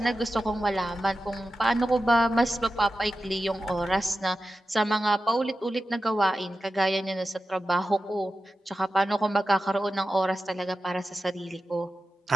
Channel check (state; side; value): normal; both; correlation 0.92